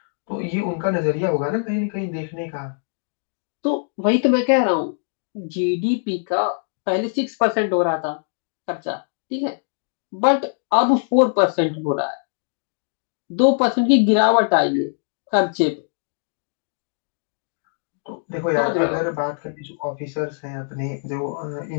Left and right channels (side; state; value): right; silent; digital silence